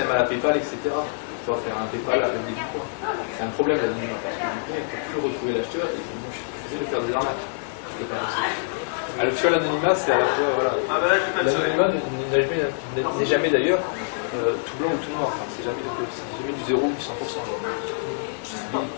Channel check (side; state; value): right; silent; digital silence